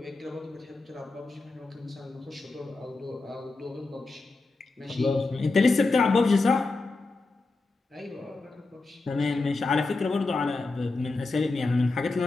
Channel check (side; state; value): right; quieter; 3.5 dB